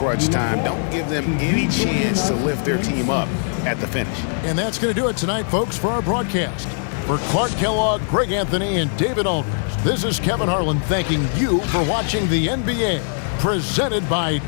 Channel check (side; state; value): right; silent; digital silence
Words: time. Don't give them any chance to lift their team up at the finish. And that's going to do it tonight, folks, for our broadcast. For Clark Kellogg, Greg Anthony, and David Aldridge, this is Kevin Harlan thanking you for watching the NBA, presented by